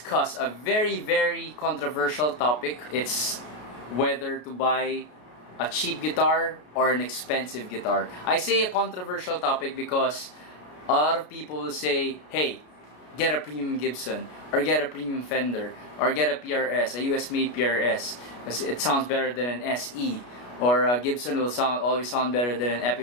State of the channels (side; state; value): right; late; 33 ms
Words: a very controversial topic. It's whether to buy a cheap guitar or an expensive guitar. I say a controversial topic because a lot of people will say, hey, get a premium Gibson, or get a premium Fender, or get a PRS, a US made PRS, because it sounds better than an SE, or a Gibson will always sound better than an